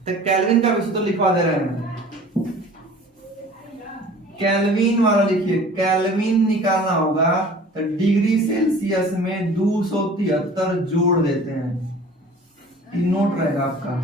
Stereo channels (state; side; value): normal; both; correlation 0.46